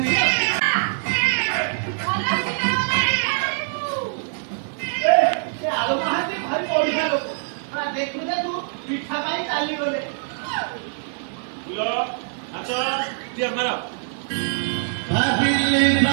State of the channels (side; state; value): left; silent; digital silence